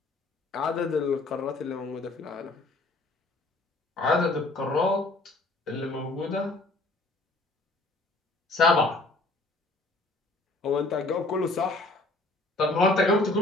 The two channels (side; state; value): right; quieter; 3.0 dB